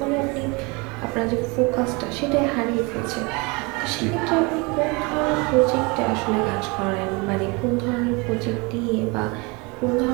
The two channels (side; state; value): left; quieter; 27.9 dB